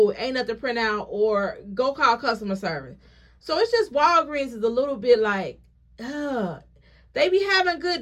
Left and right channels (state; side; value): identical; both; correlation 1.00